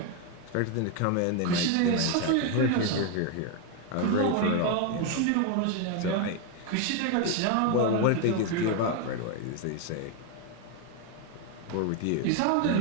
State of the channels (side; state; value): both; different; correlation 0.01